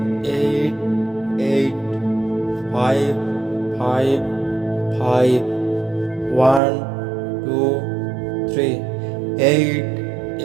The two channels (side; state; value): left; drops out; at 6.6 s